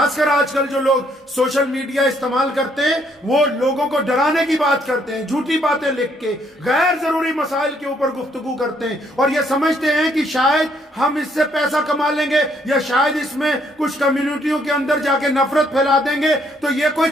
کر آج کل جو لوگ سوشل میڈیا استعمال کرتے ہیں، وہ لوگوں کو ڈرانے کی بات کرتے ہیں، جھوٹی باتیں لکھ کے غیر ضروری مسائل کے اوپر گفتگو کرتے ہیں، اور یہ سمجھتے ہیں کہ شاید ہم اس سے پیسہ کما لیں گے، یا شاید اس میں کچھ کمیونٹیوں کے اندر جا کے نفرت پھیلا دیں گے۔ تو یہ کوئی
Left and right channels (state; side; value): normal; both; correlation 0.69